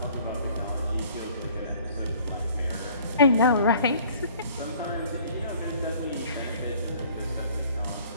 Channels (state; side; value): inverted; both; correlation -0.54